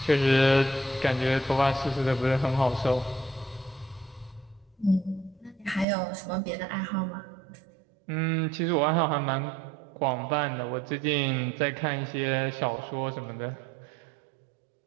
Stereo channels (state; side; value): drops out; left; at 5.9 s